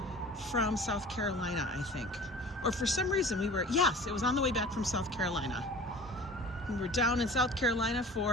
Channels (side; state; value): both; normal; correlation 0.42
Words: from South Carolina, I think. Or for some reason yes, it was on the way back from South Carolina. We were down in South Carolina